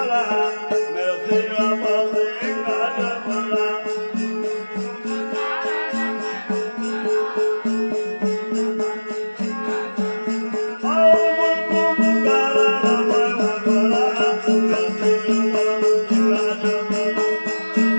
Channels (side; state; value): both; inverted; correlation -1.00